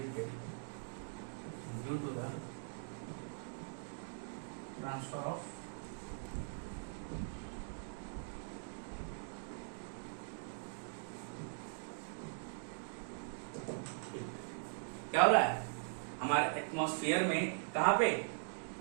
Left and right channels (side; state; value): left; silent; digital silence